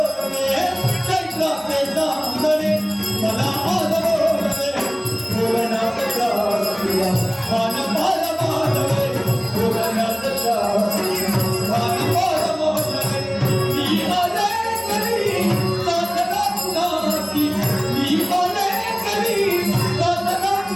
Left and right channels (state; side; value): identical; both; correlation 1.00